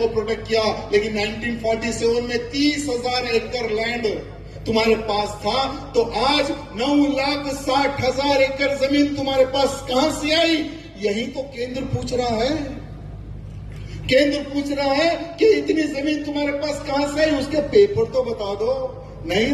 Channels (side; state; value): both; identical; correlation 1.00